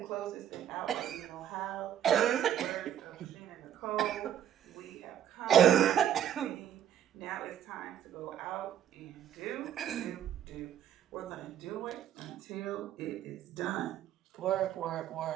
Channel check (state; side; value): quieter; left; 10.2 dB